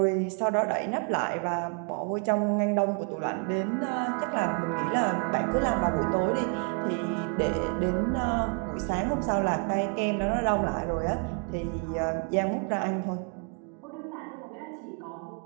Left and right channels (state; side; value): quieter; left; 39.1 dB